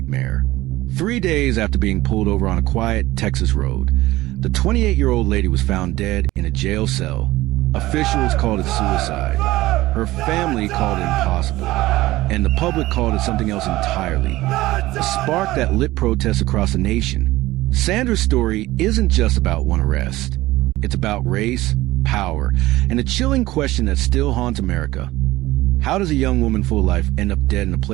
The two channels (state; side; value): quieter; left; 17.7 dB